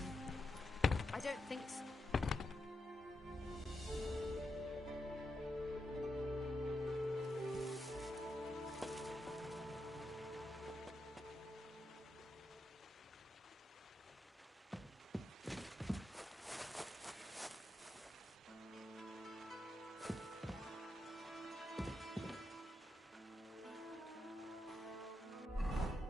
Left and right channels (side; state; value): both; normal; correlation 0.86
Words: I don't think so.